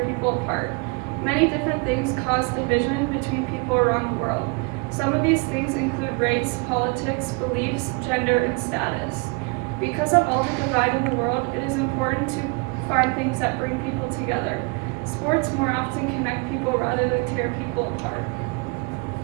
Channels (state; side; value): quieter; left; 31.3 dB